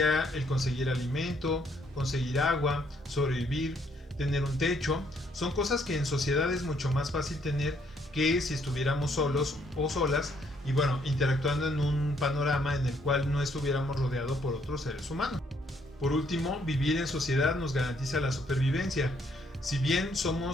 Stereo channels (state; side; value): normal; both; correlation 0.69